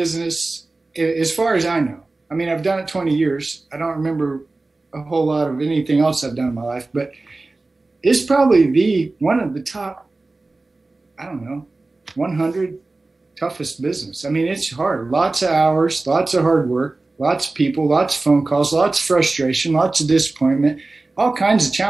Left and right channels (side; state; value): left; quieter; 3.3 dB